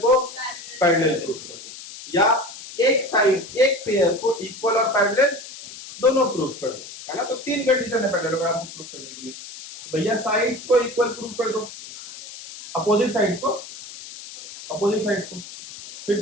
पैरेलल प्रूफ कर दो, या एक साइड एक पेयर को इक्वल और पैरेलल दोनों प्रूफ कर दो, है ना। तो तीन कंडीशन है पैरेललोग्राम को प्रूफ करने के लिए। भैया साइड्स को इक्वल प्रूफ कर दो, अपोजिट साइड्स को, अपोजिट साइड्स को। फिर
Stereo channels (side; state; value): left; noise; hiss, 14 dB below the sound